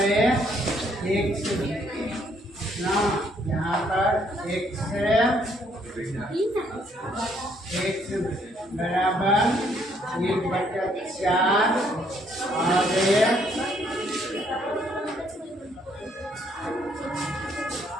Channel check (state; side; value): normal; both; correlation 0.68